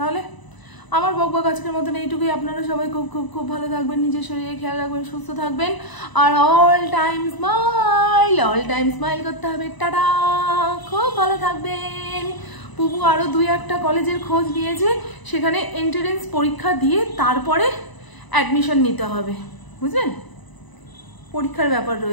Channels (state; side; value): late; right; 1.0 ms